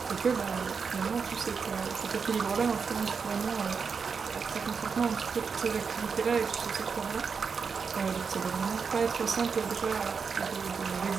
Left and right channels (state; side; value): quieter; left; 5.6 dB